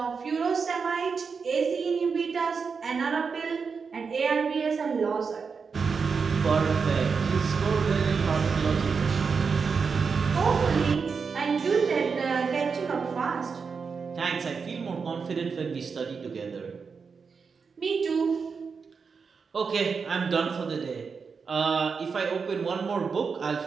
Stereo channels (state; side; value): quieter; left; 5.4 dB